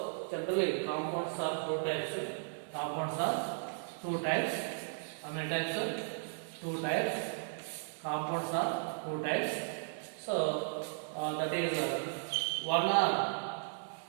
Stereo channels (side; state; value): left; silent; digital silence